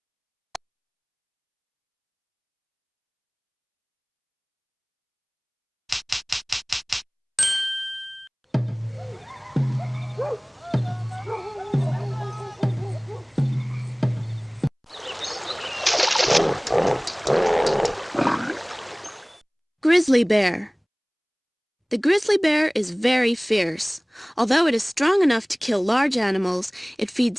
Grizzly bear. The grizzly bear is very fierce. Although it is strong enough to kill large animals, it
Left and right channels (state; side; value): identical; both; correlation 1.00